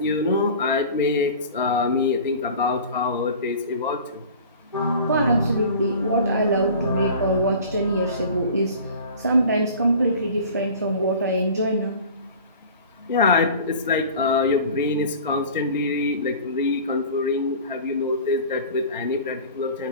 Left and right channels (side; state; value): both; inverted; correlation -0.41